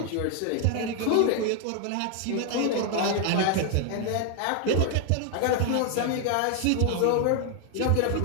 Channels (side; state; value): both; different; correlation 0.00